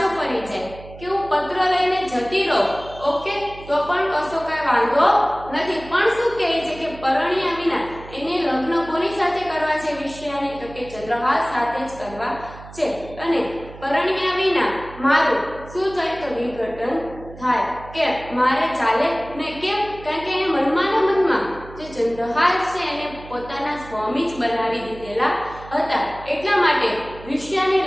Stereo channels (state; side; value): noise; right; hum, 17 dB below the sound